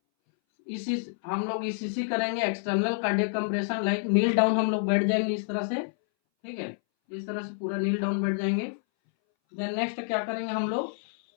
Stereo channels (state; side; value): silent; right; 59 dB below the other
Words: इसी हम लोग ईसीसी करेंगे, एक्सटर्नल कार्डियक कंप्रेशन लाइक नील डाउन हम लोग बैठ जाएंगे इस तरह से, ठीक है, इस तरह से पूरा नील डाउन बैठ जाएंगे। देन नेक्स्ट क्या करेंगे हम लोग